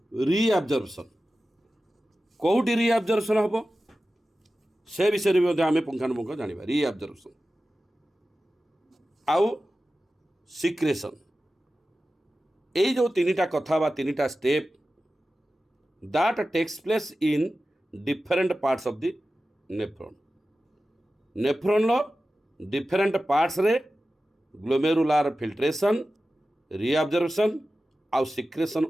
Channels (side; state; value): both; normal; correlation 0.94